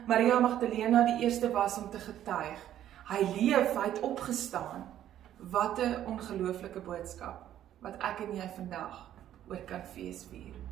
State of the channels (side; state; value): left; quieter; 11.6 dB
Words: Maria Magdalena die eerste was om te getuig. Hy leef, hy het opgestaan. Wat 'n ongelooflike boodskap, wat ek en jy vandag oor kan feesvier.